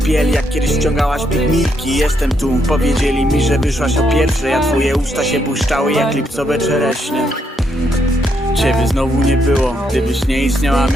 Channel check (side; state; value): both; normal; correlation 0.76